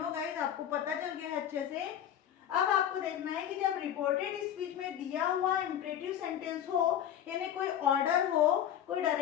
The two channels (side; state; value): right; quieter; 10.3 dB